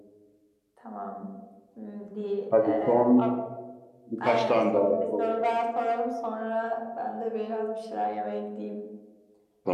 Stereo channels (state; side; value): identical; both; correlation 1.00